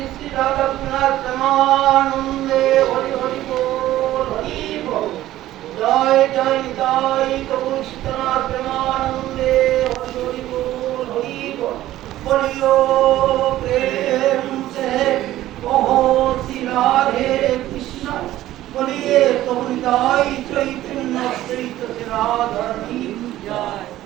শ্রী রাধা রঘুনাথ প্রেমানন্দে হরি হরি বল হরি বল জয় জয় জয় প্রভু সীতানাথ প্রেমানন্দে হরি হরি বল হরি বল বলিও প্রেম সে কहो শ্রী রাধে কৃষ্ণ বলিए প্রভু নিতাই চৈতন্য চৈত রাধারণী জয়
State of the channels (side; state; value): left; quieter; 14.5 dB